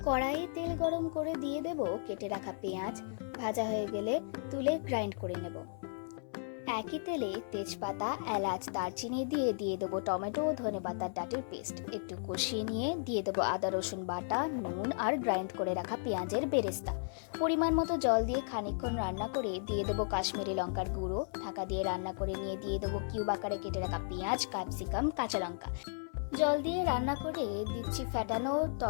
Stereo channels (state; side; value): silent; right; 55 dB below the other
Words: কড়াইয়ে তেল গরম করে দিয়ে দেব কেটে রাখা পেঁয়াজ। ভাজা হয়ে গেলে তুলে গ্রাইন্ড করে নেব। একই তেলে তেজপাতা, এলাচ, দারচিনি দিয়ে দেবো টমেটো ও ধনেপাতার ডাঁটির পেস্ট। একটু কষিয়ে নিয়ে দিয়ে দেবো আদা রসুন বাটা, নুন আর গ্রাইন্ড করে রাখা পেঁয়াজের বেরেস্তা। পরিমাণ মতো জল দিয়ে খানিকক্ষণ রান্না করে দিয়ে দেবো কাশ্মীরি লঙ্কার গুঁড়ো। ঢাকা দিয়ে রান্না করে নিয়ে দিয়ে দেবো কিউব আকারে কেটে রাখা পেঁয়াজ, ক্যাপসিকাম, কাঁচা লঙ্কা। জল দিয়ে রান্না করে দিচ্ছি ফ্যাটানো